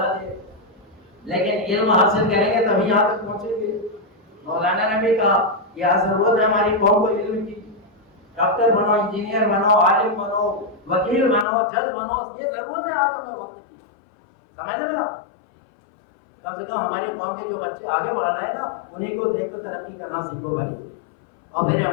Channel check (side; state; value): right; drops out; at 11.5 s